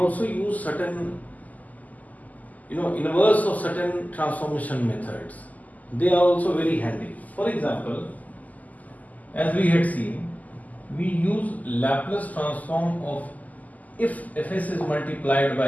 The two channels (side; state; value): right; late; 0.078 ms